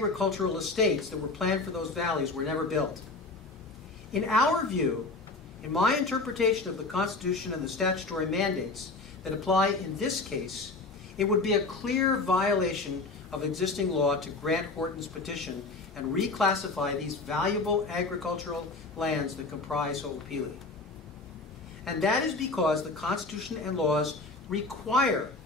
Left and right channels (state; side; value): quieter; right; 3.6 dB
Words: estates that were planned for those valleys were never built. In our view, in my interpretation of the Constitution and the statutory mandates that apply in this case, it would be a clear violation of existing law to grant Horton's petition and reclassify these valuable agricultural lands that comprise Ho'opili. And that is because the Constitution and laws require